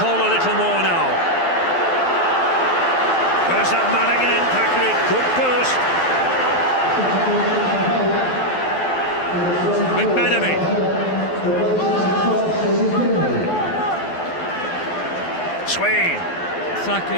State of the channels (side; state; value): right; late; 12 ms